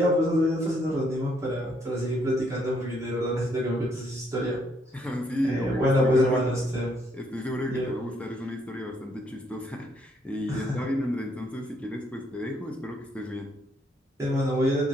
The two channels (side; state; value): both; normal; correlation 0.71